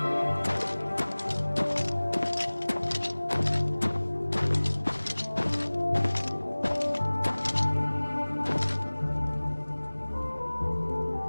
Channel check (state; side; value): inverted; both; correlation -1.00